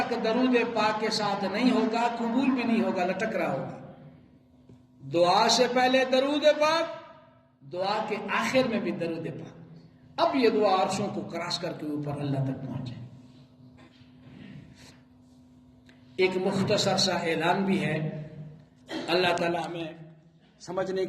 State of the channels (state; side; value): identical; both; correlation 1.00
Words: درود پاک کے ساتھ نہیں ہوگا قبول بھی نہیں ہوگا، لٹک رہا ہوگا۔ دعا سے پہلے درود پاک، دعا کے آخر میں بھی درود پاک، اب یہ دعا عرشوں کو کراس کر کے اوپر اللہ تک پہنچے۔ ایک مختصر سا اعلان بھی ہے، اللہ تعالیٰ ہمیں سمجھنے